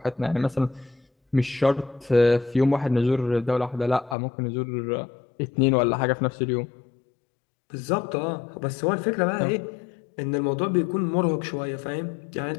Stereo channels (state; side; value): drops out; right; at 4.2 s